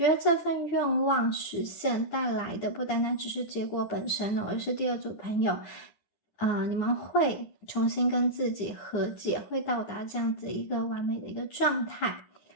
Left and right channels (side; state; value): right; late; 10 ms